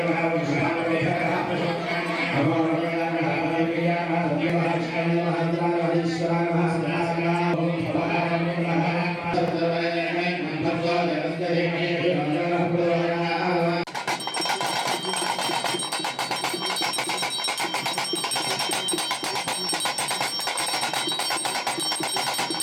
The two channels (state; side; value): identical; both; correlation 1.00